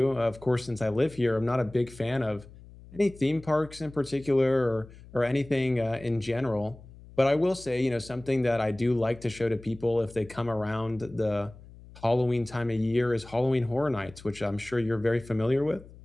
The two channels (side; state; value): left; noise; hum, 20 dB below the sound